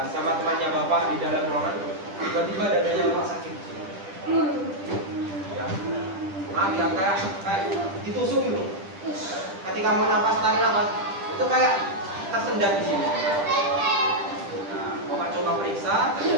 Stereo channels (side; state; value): left; late; 10 ms